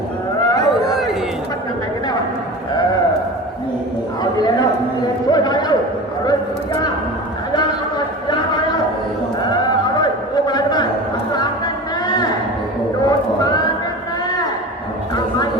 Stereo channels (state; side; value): normal; both; correlation 0.32